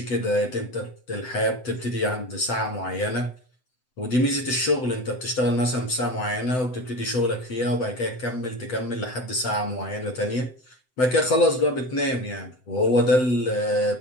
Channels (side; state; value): right; late; 7.8 ms